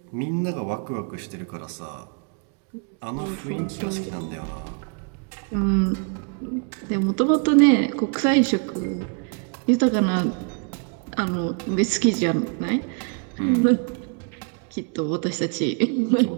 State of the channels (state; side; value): quieter; left; 37.4 dB